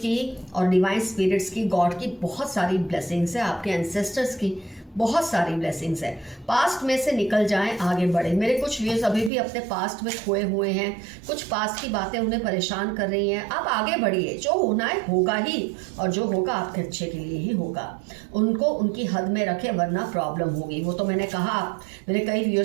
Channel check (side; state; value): left; drops out; at 9.3 s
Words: और डिवाइन स्पिरिट्स की, गॉड की बहुत सारी ब्लेसिंग्स है, आपके एंसेस्टर्स की बहुत सारी ब्लेसिंग्स है। पास्ट में से निकल जाएं, आगे बढ़े। मेरे कुछ व्यूअर्स अभी भी अपने पास्ट में खोए हुए हैं, कुछ पास्ट की बातें उन्हें परेशान कर रही हैं। आप आगे बढ़िए, जो होना है होगा ही, और जो होगा आपके अच्छे के लिए ही होगा। उनको उनकी हद में रखें, वरना प्रॉब्लम होगी। वो तो मैंने कहा, मेरे कई